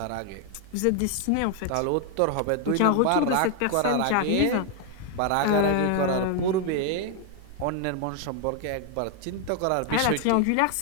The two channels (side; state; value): both; different; correlation 0.00